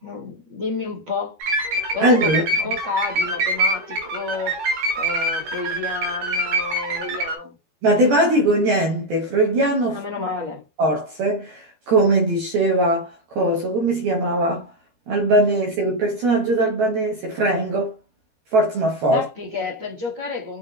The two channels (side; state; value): left; late; 12 ms